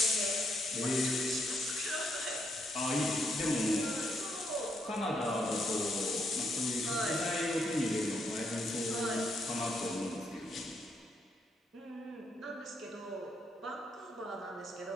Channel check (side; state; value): both; normal; correlation 0.76